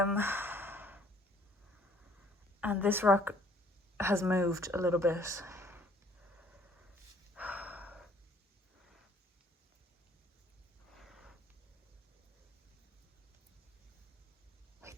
this rock has moved a little bit.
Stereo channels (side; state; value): both; normal; correlation 0.59